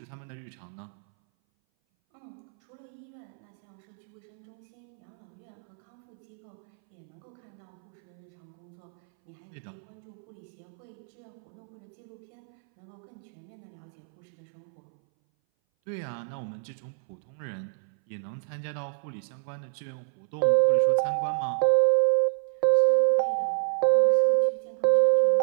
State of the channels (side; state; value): left; silent; 58 dB below the other